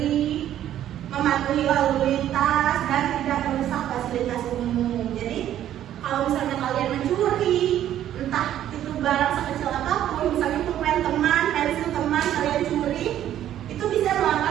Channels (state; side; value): quieter; left; 11.6 dB